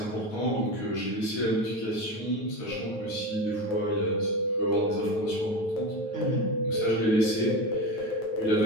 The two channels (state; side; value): late; right; 9.2 ms